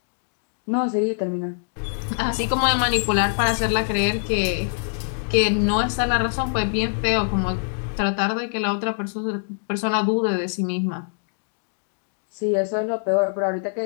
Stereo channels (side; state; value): right; silent; digital silence